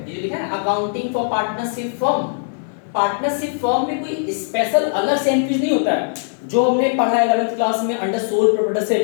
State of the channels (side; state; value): right; silent; digital silence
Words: ये जो लिखा है ना accounting for partnership firm. Partnership firm में कोई स्पेशल अलग से एंट्रीज नहीं होता है, जो हमने पढ़ा है 11th क्लास में अंडर सोल